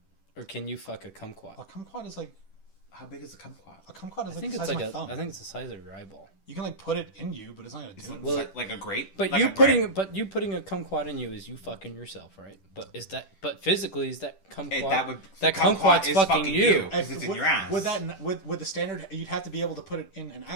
Or can you fuck a A kumquat? kumquat is like... How big is a kumquat? A kumquat is I like think the it's size like of my thumb. I think it's the size of your eyeball. You can like put it in you, but it's not gonna do it. Well, Like a grape? But Like you a grape? putting a kumquat in you is you fucking yourself, right? But physically is that kumquat That kumquat's is fucking you? Because it's in your ass. With the standard, you'd have to be able to put it in and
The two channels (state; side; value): late; right; 10 ms